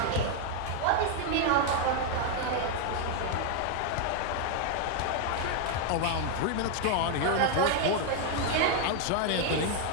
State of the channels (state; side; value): different; both; correlation 0.00